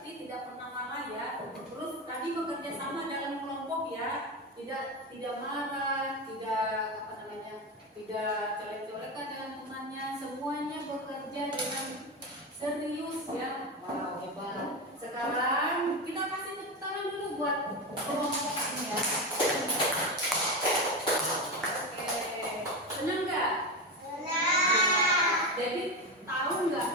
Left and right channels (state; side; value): normal; both; correlation 0.17